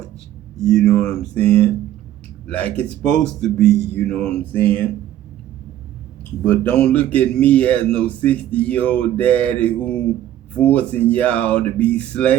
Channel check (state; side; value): quieter; left; 12.4 dB